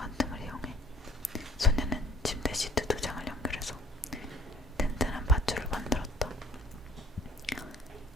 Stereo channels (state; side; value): normal; both; correlation 0.54